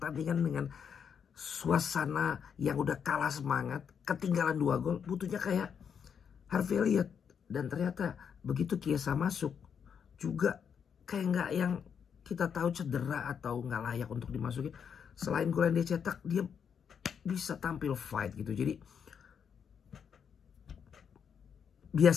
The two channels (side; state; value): right; quieter; 7.3 dB